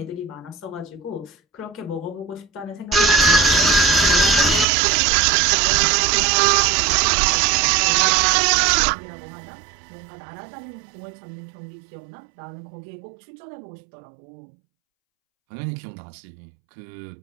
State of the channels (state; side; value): drops out; left; at 4.7 s